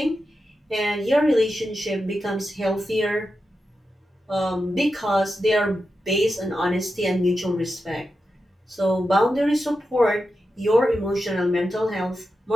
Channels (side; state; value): both; normal; correlation 0.89